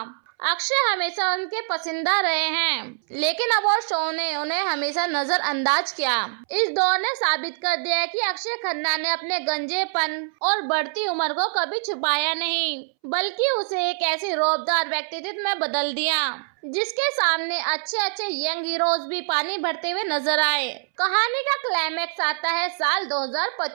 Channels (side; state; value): left; silent; 62 dB below the other